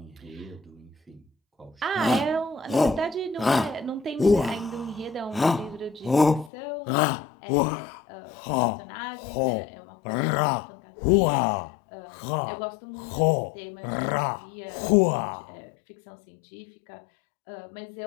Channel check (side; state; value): right; drops out; at 6.5 s